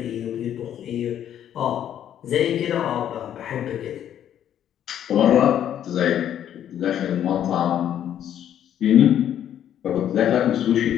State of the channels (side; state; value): right; quieter; 10.3 dB